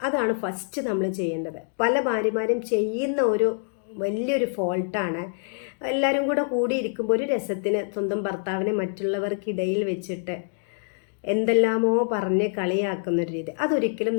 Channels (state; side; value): silent; right; digital silence